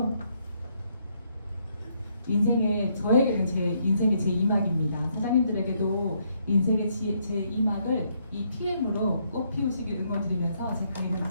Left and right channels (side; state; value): both; inverted; correlation -0.73